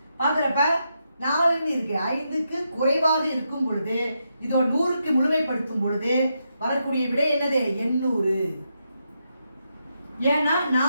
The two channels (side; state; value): both; inverted; correlation -0.83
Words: 4ன்னு இருக்கு. 5க்கு குறைவாக இருக்கும் பொழுது இதோ 100க்கு முழுமைப்படுத்தும் பொழுது வரக்கூடிய விடை என்னது? 800. ஏன்னா